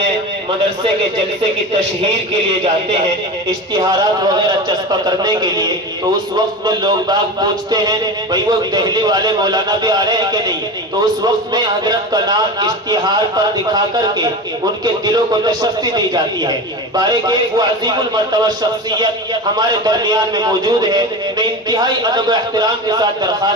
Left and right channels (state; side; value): normal; both; correlation 0.27